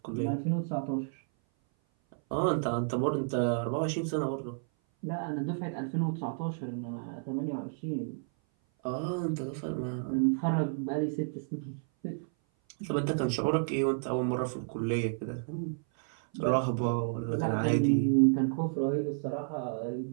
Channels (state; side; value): silent; left; 56 dB below the other